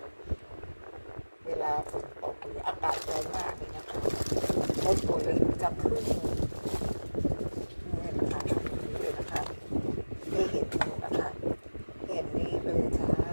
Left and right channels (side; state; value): both; inverted; correlation -1.00